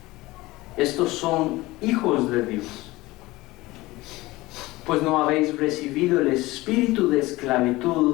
estos son hijos de Dios. Pues no habéis recibido el espíritu de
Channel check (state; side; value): quieter; right; 19.7 dB